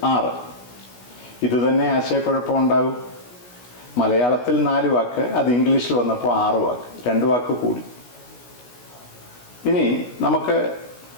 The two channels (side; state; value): right; late; 16 ms